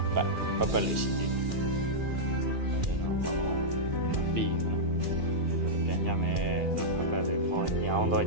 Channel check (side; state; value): left; late; 2.4 ms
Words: ပတ်လေးရှိသေးတယ်အဲ့ဒါတော့ဘောင်းပြီးတော့ပြန်ကြမယ်ပတ်လေးပေါ်ညောင်းတော့